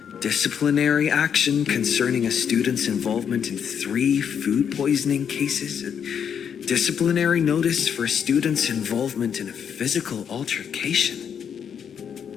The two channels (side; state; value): right; quieter; 7.8 dB